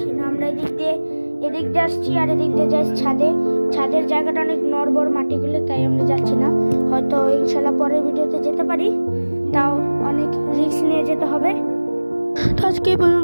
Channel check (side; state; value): both; inverted; correlation -1.00